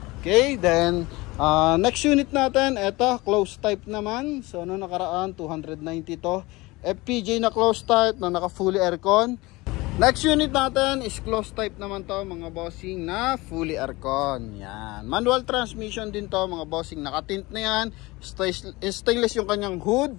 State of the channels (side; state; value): right; quieter; 21.9 dB